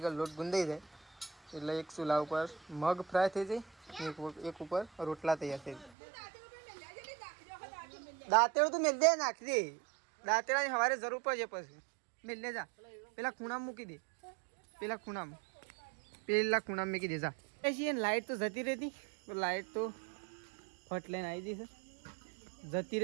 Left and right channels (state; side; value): drops out; left; at 5.9 s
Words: કે લોટ ગુંદાઈ જાય એટલે એક ચૂલા ઉપર મગ ફ્રાય થઈ જાય, એક ઉપર રોટલા તૈયાર થઈ જાય. દાંતેડું તું મેલ દે, નાખી દે. દાંતેડાની સવારે જરૂર પડશે પછી મેલ લે જા. પેલા ખૂણામાં મૂકી દે, પેલા ખૂણામાં મૂકી દે જા. પછી લાઇટ તો જતી રહેતી, લાઇટ તો ફટ લઈને આવી જઈ છે, જતી